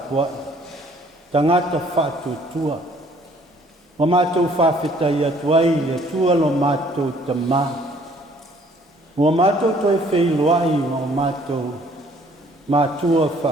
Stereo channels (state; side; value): normal; both; correlation 0.59